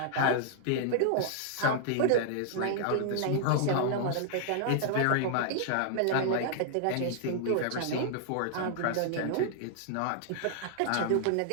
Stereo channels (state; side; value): different; both; correlation -0.01